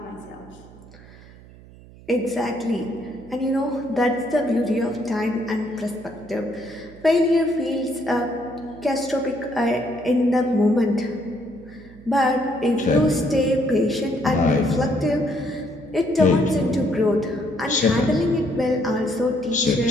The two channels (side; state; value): right; noise; hum, 21 dB below the sound